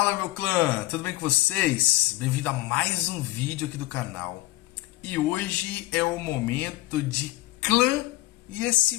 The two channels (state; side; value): quieter; right; 18.3 dB